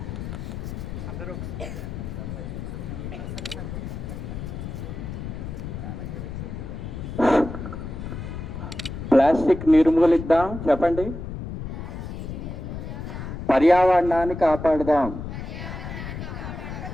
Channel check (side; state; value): left; noise; rumble, 7 dB below the sound